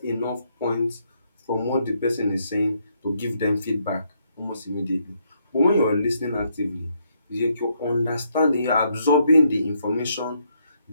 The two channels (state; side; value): inverted; both; correlation -0.74